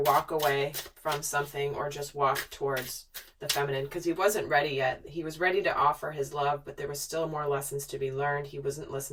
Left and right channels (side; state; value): both; identical; correlation 1.00